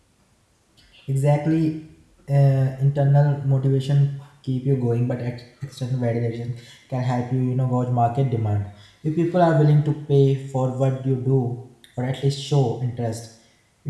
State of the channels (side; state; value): both; identical; correlation 1.00